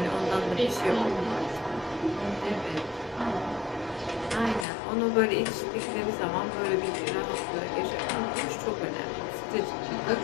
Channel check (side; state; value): right; drops out; at 4.7 s